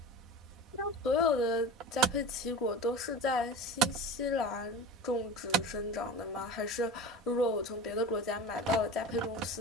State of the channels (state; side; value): normal; both; correlation 0.33